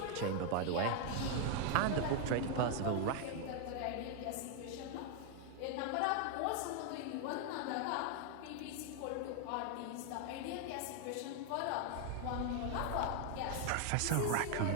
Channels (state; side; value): different; both; correlation 0.00